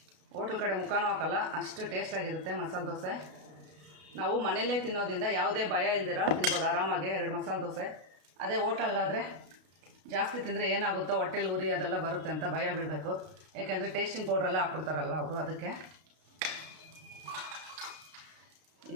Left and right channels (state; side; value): late; left; 32 ms